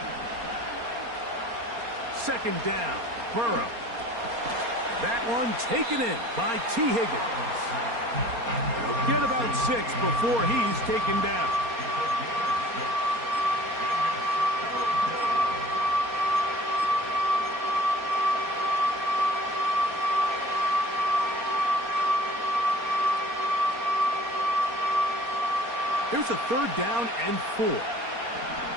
Second down, Burrow. That one taken in by T. Higgins. He'll get about 6 before he's taken down. Here's a 3rd down and 4.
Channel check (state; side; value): late; left; 4.3 ms